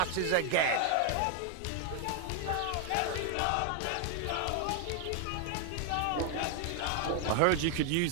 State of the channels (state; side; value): different; both; correlation 0.00